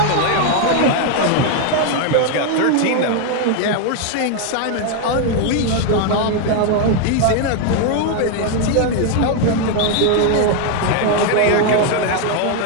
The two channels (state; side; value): different; both; correlation 0.01